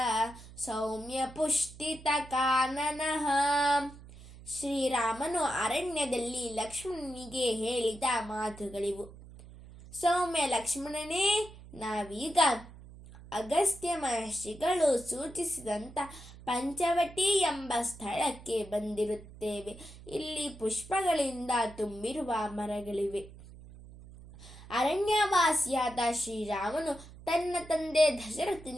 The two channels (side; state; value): right; noise; hum, 18 dB below the sound